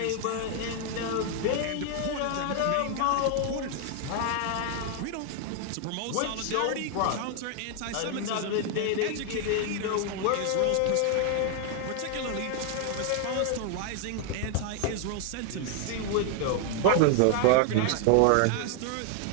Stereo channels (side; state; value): both; different; correlation 0.00